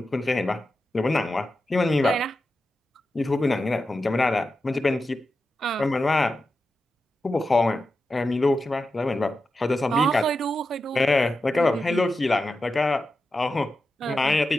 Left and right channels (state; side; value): normal; both; correlation 0.90